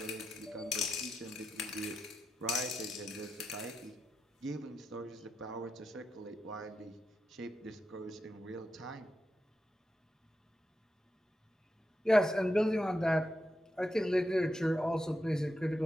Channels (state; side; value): normal; both; correlation 0.87